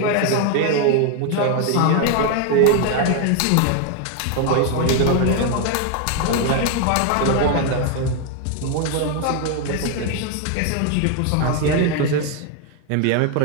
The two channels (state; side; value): different; both; correlation 0.01